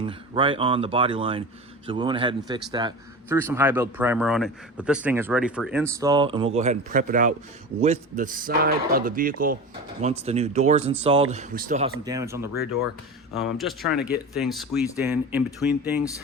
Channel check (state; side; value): normal; both; correlation 0.29